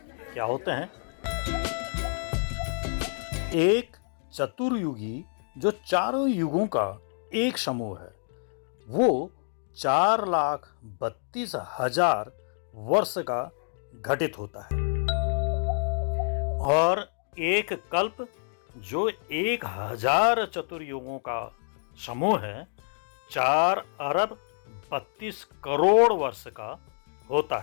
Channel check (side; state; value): right; silent; digital silence